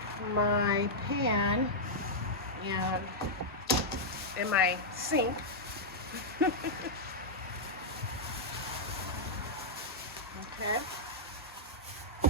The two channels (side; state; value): both; normal; correlation -0.07